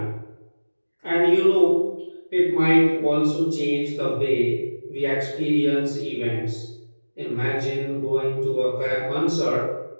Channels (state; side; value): inverted; both; correlation -1.00